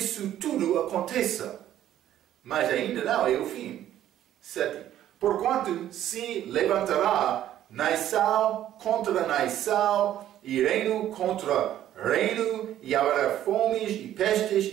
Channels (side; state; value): left; quieter; 12.0 dB